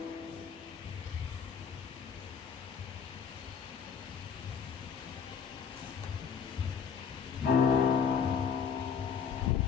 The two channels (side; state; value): right; quieter; 6.9 dB